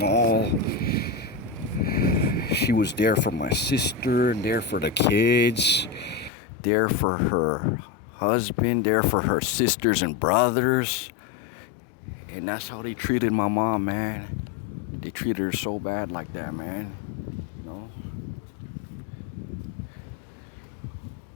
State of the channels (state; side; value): drops out; right; at 6.3 s